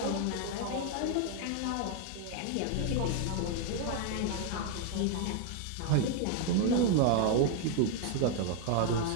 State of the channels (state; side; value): different; both; correlation 0.00